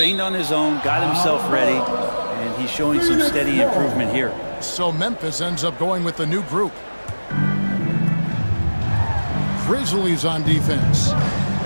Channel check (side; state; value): both; inverted; correlation -1.00